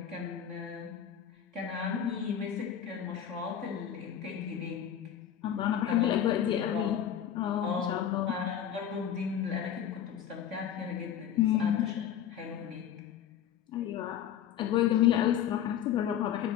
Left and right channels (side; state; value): right; quieter; 9.6 dB